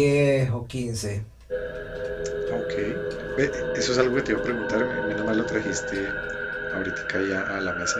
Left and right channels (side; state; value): both; identical; correlation 1.00